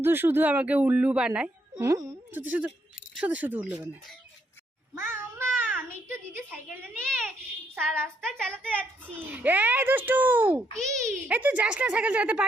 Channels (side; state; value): both; normal; correlation 0.75